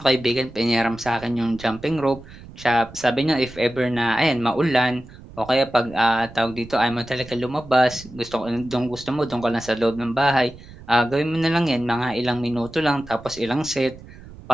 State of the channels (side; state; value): right; noise; rumble, 18 dB below the sound